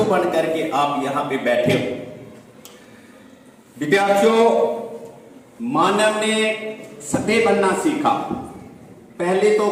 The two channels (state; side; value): identical; both; correlation 1.00